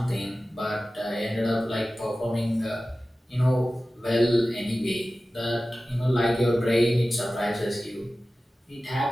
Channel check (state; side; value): normal; both; correlation 0.95